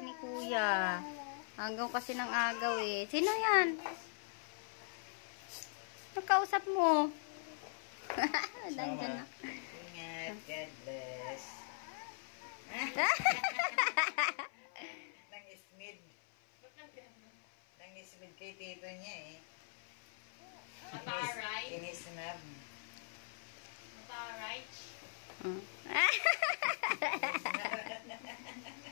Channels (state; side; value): silent; right; 51 dB below the other